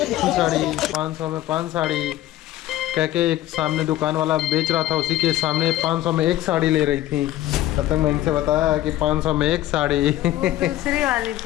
साड़ी, 500 में 5 साड़ी कह के एक सामने दुकान वाला बेच रहा था, उसी के सामने 500 में एक साड़ी ले रही थी। तब तक मैं इनसे बताया कि 500 में एक साड़ी दूसरी वाली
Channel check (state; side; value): quieter; right; 14.3 dB